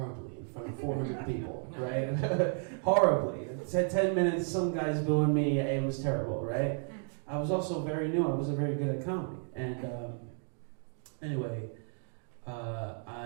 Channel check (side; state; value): left; silent; 56 dB below the other